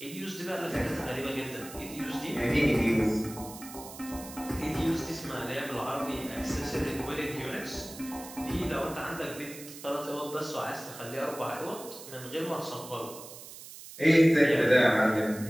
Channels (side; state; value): right; noise; hiss, 14 dB below the sound